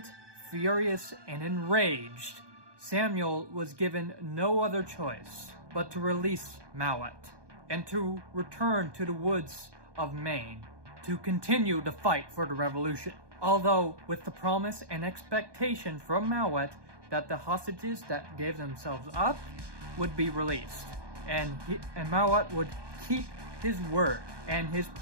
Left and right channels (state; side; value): late; left; 1.2 ms